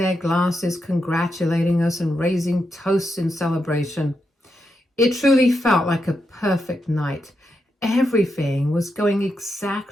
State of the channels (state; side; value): normal; both; correlation 0.84